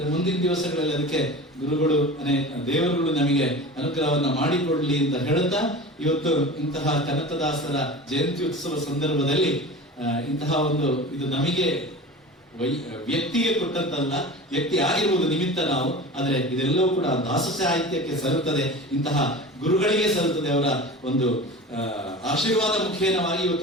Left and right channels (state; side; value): normal; both; correlation 0.34